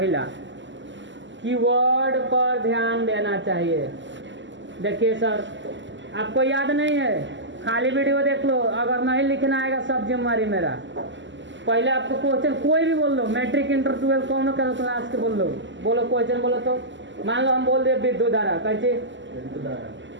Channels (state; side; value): late; left; 0.54 ms